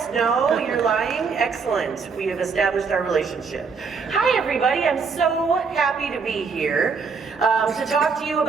no, you're lying? Excellent. We have established our relationship. Hi, everybody. I'm so happy to be here to talk to you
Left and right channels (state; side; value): quieter; left; 5.2 dB